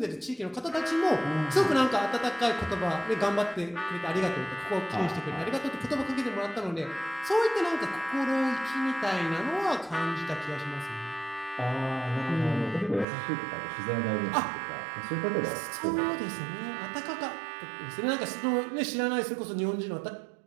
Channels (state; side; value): drops out; left; at 13.1 s